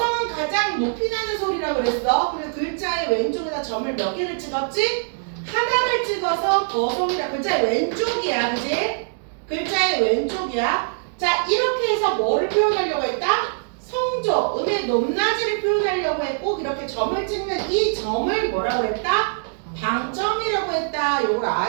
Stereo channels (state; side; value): silent; left; digital silence